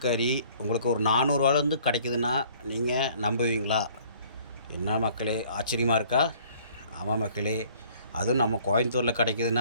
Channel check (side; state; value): both; inverted; correlation -0.56